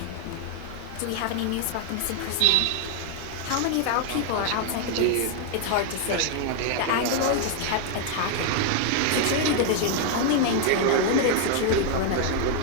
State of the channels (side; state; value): both; different; correlation 0.00